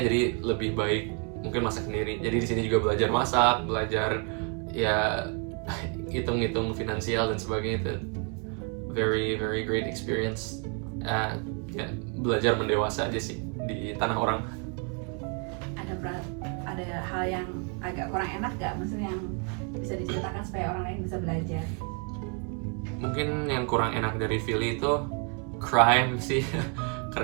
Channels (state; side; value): quieter; left; 35.8 dB